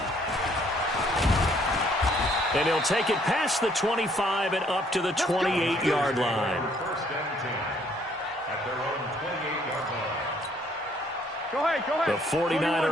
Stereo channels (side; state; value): both; normal; correlation 0.64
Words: And he'll take it past the 25 and up to the 28-yard line. First and 10 at their own 28-yard line. Go ahead. The